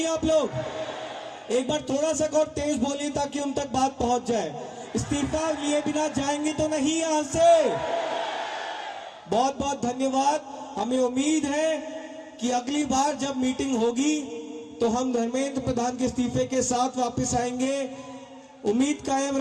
आप लोग? एक बार थोड़ा सा और तेज बोलिए ताकि उन तक बात पहुंच जाए। इस्तीफा लिए बिना जाएंगे तो नहीं यहां से? बहुत बहुत धन्यवाद। हमें उम्मीद है कि अगली बार जब मीटिंग होगी तो हम धर्मेंद्र प्रधान के इस्तीफे के साथ वापस आएंगे। उम्मीद कायम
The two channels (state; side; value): identical; both; correlation 1.00